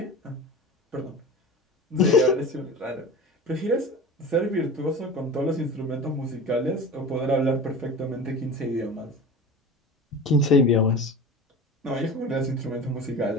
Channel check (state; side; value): normal; both; correlation 0.34